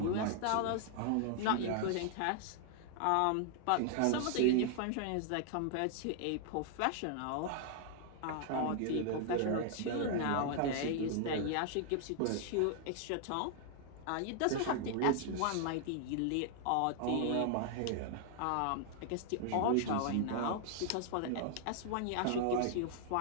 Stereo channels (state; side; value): different; both; correlation 0.00